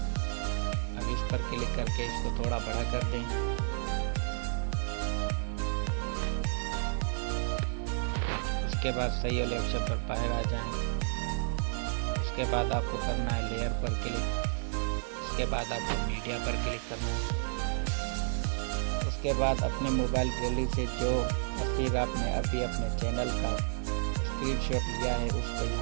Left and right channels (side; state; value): left; silent; digital silence